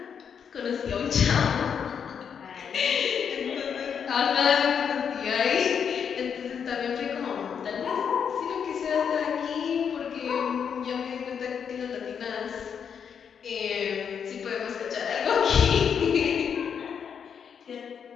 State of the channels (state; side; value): quieter; right; 7.3 dB